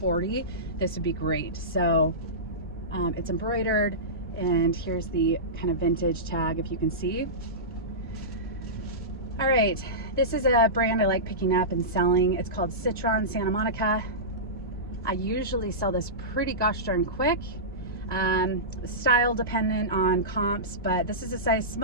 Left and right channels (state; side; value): normal; both; correlation -0.18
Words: this would be great. So it's embroidered, and here's the kind of vintage tag, if you can see. All right, this is a brand I like picking up and selling. It's called Citron Santa Monica. I usually sell this pretty gosh darn quick. Style dependent on comps, but this is a size